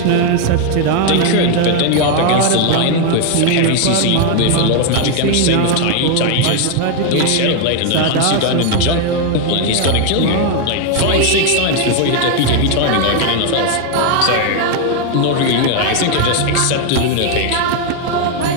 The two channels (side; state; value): both; different; correlation 0.01